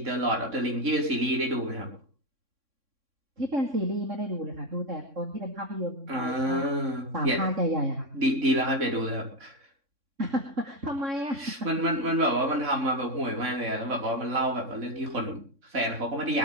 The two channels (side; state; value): left; late; 3.6 ms